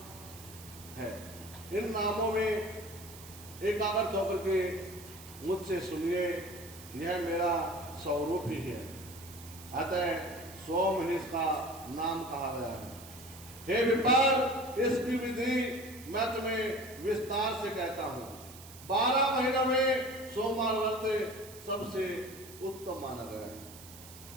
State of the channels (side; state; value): right; noise; hiss, 17 dB below the sound